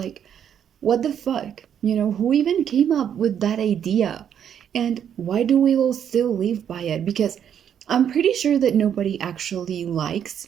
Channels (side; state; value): left; quieter; 8.9 dB